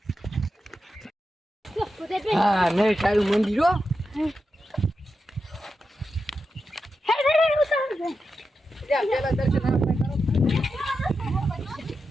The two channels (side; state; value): both; normal; correlation 0.89